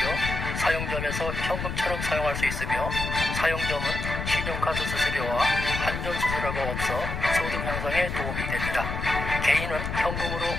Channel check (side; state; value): left; noise; rumble, 4 dB below the sound